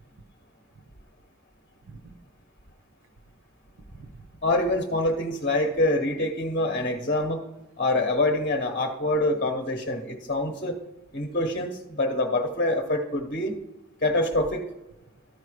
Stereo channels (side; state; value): both; normal; correlation 0.01